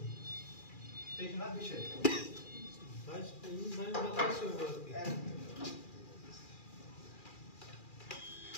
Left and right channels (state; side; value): late; right; 2.4 ms